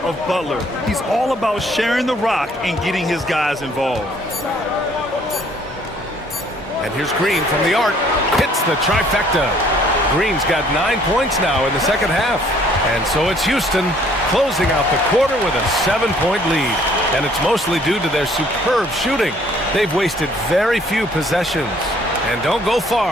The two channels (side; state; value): both; normal; correlation 0.60